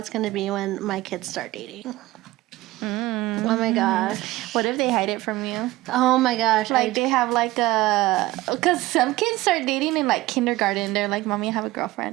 gonna be when my kids start dating. Oh my gosh. What if they hide it from you? Oh my gosh. Like they have like a, because some kids start dating in like kindergarten. They're like, "Mommy, I have a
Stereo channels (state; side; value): quieter; left; 18.3 dB